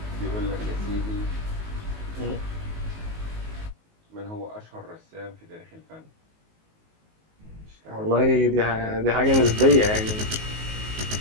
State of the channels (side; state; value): left; late; 19 ms